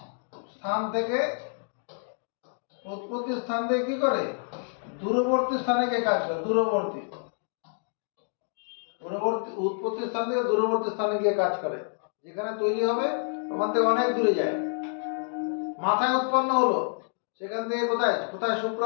স্থান থেকে কি করে? দূরবর্তী স্থানে গিয়ে কাজ করে। উৎপত্তি স্থান থেকে দূরবর্তী স্থানে গিয়ে কাজ করে। যেখানে তৈরি হবে ওখান থেকে অনেক দূরে যায়। মাথায় উৎপন্ন হলো, সেখান থেকে কোথায়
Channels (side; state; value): right; silent; 59 dB below the other